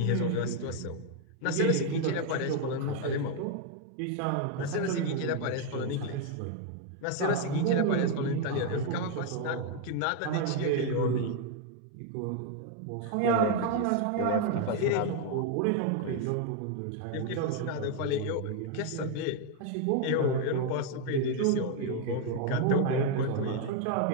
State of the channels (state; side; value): different; both; correlation 0.01